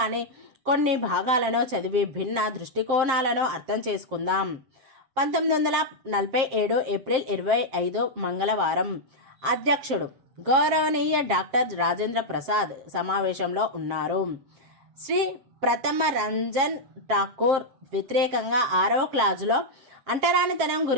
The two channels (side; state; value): left; late; 7.5 ms